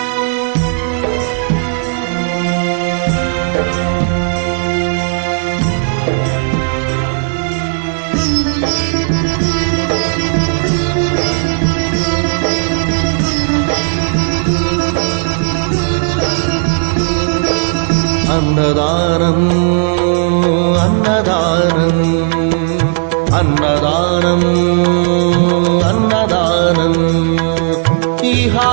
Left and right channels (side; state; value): left; silent; digital silence